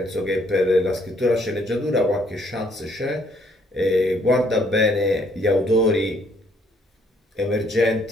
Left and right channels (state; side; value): normal; both; correlation 0.67